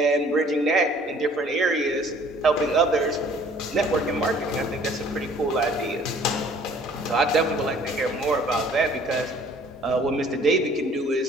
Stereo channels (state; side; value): normal; both; correlation 0.55